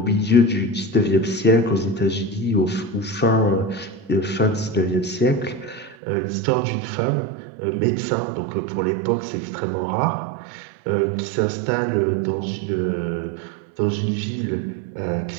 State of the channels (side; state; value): left; drops out; at 6.0 s